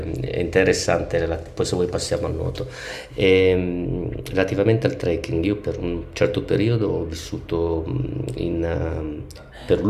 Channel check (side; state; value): both; identical; correlation 1.00